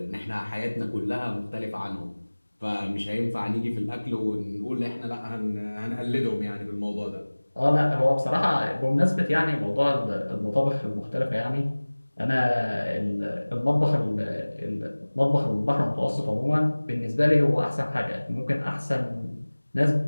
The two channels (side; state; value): both; inverted; correlation -1.00